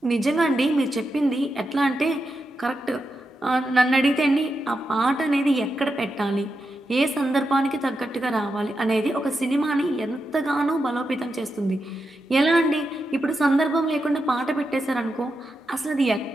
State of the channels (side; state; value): both; normal; correlation 0.87